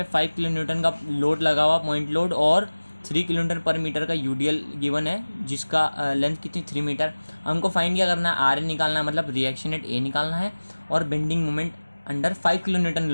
5 किलो न्यूटन का लोड लगा हुआ पॉइंट लोड, और 3 किलोमीटर पर मीटर का यूडीएल गिवन है जिसका लेंथ कितनी 3 मीटर। हमको फाइंड क्या करना है, आर ए निकालना है, मतलब रिएक्शन एट ए निकालना है। और bending moment under 5 kilo Newton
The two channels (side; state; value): both; inverted; correlation -1.00